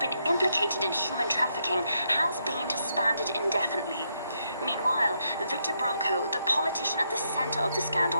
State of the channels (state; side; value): inverted; both; correlation -0.78